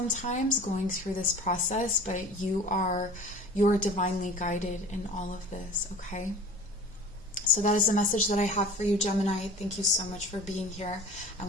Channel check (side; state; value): both; normal; correlation 0.41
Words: going through this process, but you're divinely guided in all of this, okay? So that is the message that I have for you, Gemini. Thank you so much for being here,